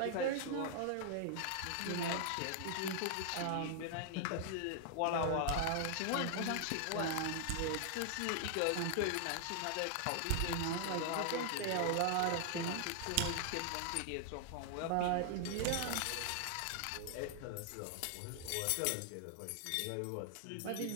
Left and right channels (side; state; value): both; different; correlation 0.00